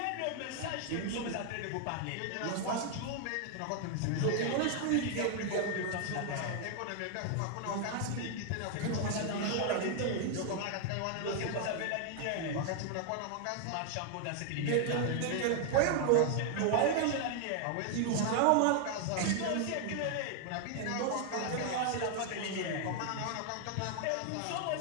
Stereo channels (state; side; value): different; both; correlation 0.00